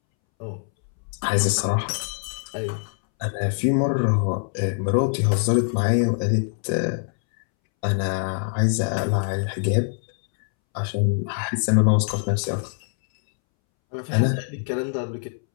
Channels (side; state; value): right; silent; 63 dB below the other